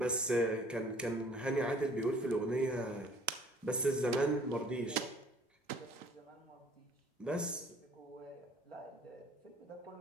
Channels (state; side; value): normal; both; correlation 0.55